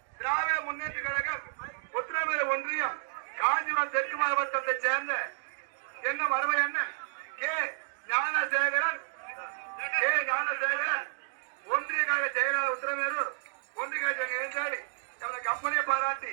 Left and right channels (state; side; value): silent; left; digital silence